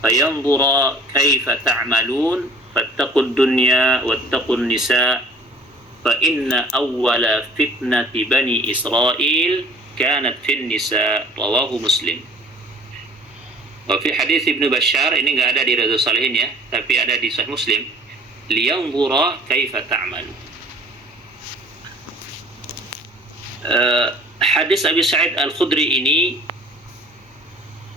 فينظر كيف تعملون فاتقوا الدنيا واتقوا النساء فإن أول فتنة بني إسرائيل كانت في النساء رواه مسلم. Fi hadis Ibnu Bashar, ini nggak ada di Riyadhus Shalihin ya, tapi ada di Sahih Muslim. Liyanzura kaifa ta'mal. Hadis Abi Sa'id Al-Khudri ini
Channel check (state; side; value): normal; both; correlation 0.51